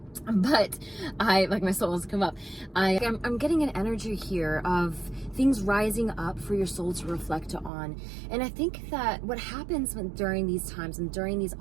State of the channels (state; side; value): drops out; left; at 7.7 s